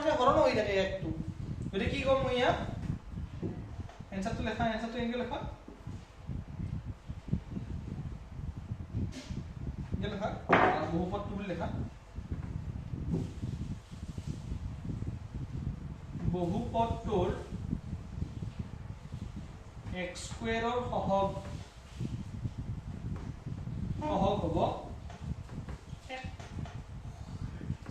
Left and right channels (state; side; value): identical; both; correlation 1.00